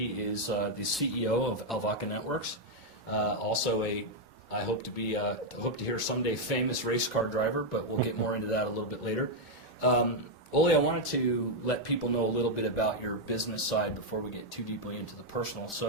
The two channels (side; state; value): both; normal; correlation 0.00